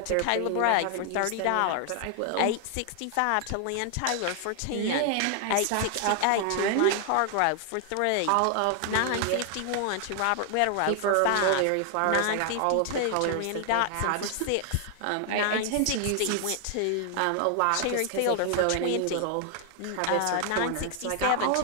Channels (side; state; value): both; different; correlation 0.00